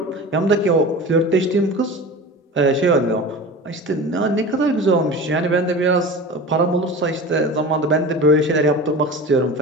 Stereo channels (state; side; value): normal; both; correlation 0.34